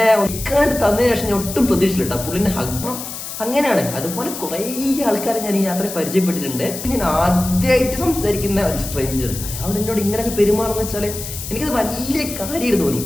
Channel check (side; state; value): left; noise; hiss, 8 dB below the sound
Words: ഒക്കാണ്ട് തന്നതിന് ശേഷം ഞാൻ ഒട്ടും പ്രതീക്ഷിച്ചില്ല പുള്ളിന്റെ ഹഗ്. അങ്ങനെയാണ്. അതുപോലെ കുറെ ആൾക്കാരെ ഞാൻ ഈ യാത്രയിൽ പരിചയപ്പെട്ടിട്ടുണ്ട്. ഞാൻ ആദ്യമായിട്ട് സംസാരിക്കുന്ന ഒരു സ്ട്രേഞ്ചർ അയാളോട് എന്നോട് ഇങ്ങനെയൊക്കെ പെരുമാറുന്ന വെച്ചാല് എനിക്കത് വലിയ കാര്യമായിട്ട് തോന്നി.